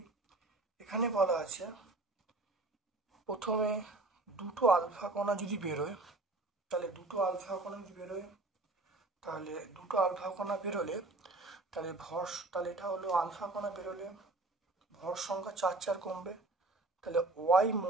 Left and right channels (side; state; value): left; quieter; 3.1 dB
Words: এখানে বলা আছে প্রথমে দুটো আলফা কণা যদি বেরোয়, তাহলে দুটো আলফা কণা বেরোলে তাহলে তাহলে এটা হলো আলফা কণা বেরোলে ভর সংখ্যা 4 কমবে। তাহলে ওয়াই